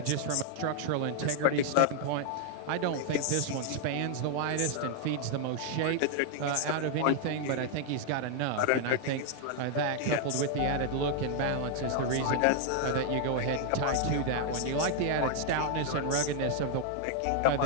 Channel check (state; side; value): different; both; correlation 0.00